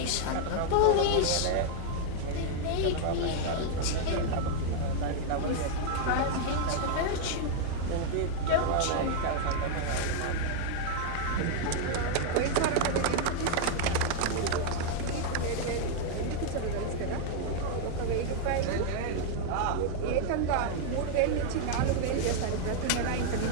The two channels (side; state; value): both; different; correlation 0.00